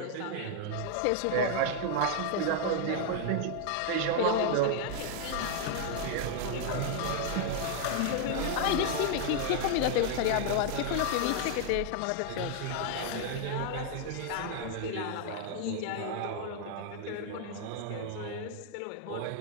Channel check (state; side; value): different; both; correlation 0.00